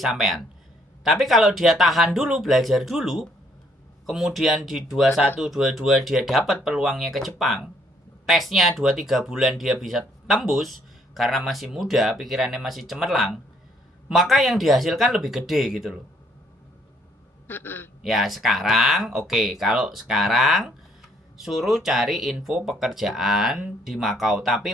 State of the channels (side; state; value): both; normal; correlation 0.66